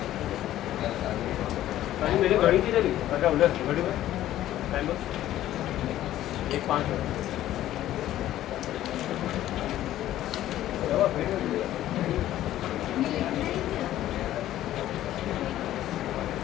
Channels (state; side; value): quieter; right; 13.4 dB